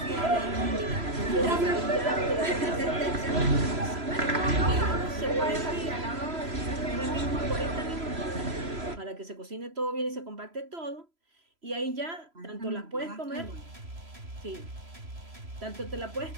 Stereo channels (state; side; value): late; left; 3.0 ms